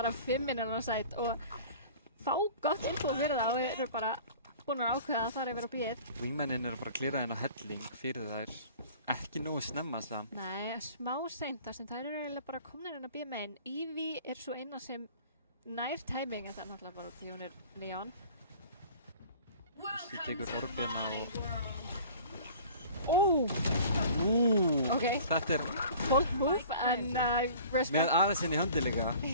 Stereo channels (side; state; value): both; inverted; correlation -0.46